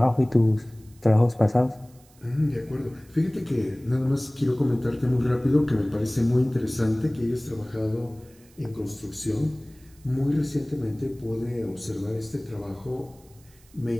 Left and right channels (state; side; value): noise; right; hiss, 28 dB below the sound